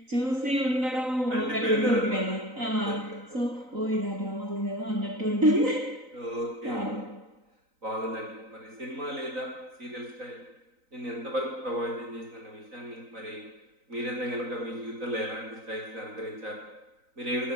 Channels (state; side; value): late; left; 3.9 ms